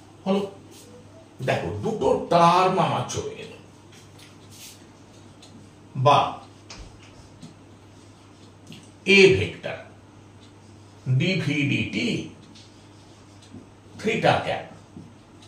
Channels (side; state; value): both; identical; correlation 1.00